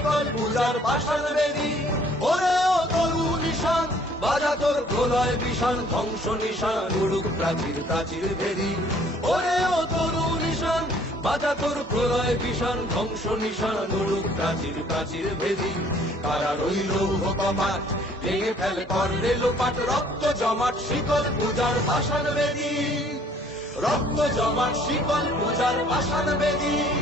পূজার পাষাণ বেদী। ওরে ও তরু নিশান বাজা তোর প্রলয় বিষান, ধ্বংস নিশান উড়ুক প্রাচীর প্রাচীর ভেদী। ওরে ও তরু নিশান বাজা তোর প্রলয় বিষান, ধ্বংস নিশান উড়ুক প্রাচীর প্রাচীর ভেদী। কারার ওই লৌহ কপাট ভেঙে ফেল কর রে লোপাট, রক্ত জমাট শিকল পূজার পাষাণ বেদী। রক্ত জমাট শিকল পূজার পাষাণ বেদী,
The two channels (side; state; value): both; normal; correlation 0.58